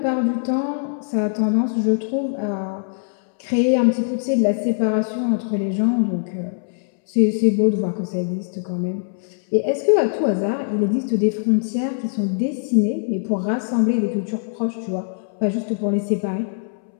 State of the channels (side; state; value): right; silent; 64 dB below the other